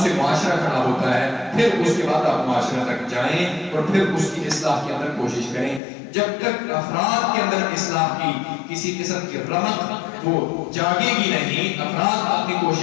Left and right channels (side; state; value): right; drops out; at 5.8 s